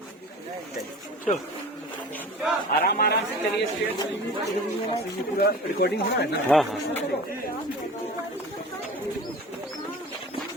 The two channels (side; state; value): both; normal; correlation 0.37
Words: आराम आराम से चलिए। पूरा रिकॉर्डिंग हो रहा है ना? हाँ हाँ।